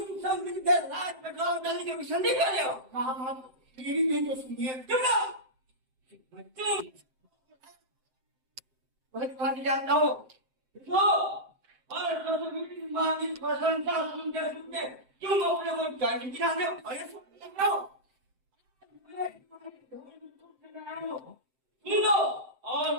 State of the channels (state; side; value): late; left; 7.7 ms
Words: सब मिलकर रात में गाँव डालने के संधि कर रहे हो। महामार, मेरी नहीं तो सुनिए। तुम बहुत बात जानता हो तो और मानी प्रशंसा सुनते सुनते तुम अपने को जान गिराने हो और ये सुन रहे हो सुन लो और